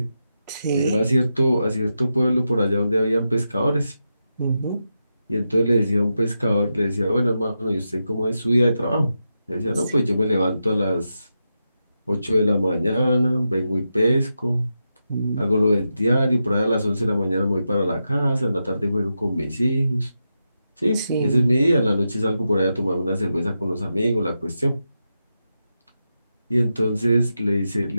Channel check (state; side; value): inverted; both; correlation -0.88